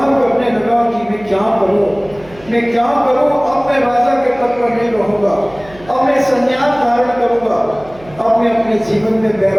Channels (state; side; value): noise; right; hum, 22 dB below the sound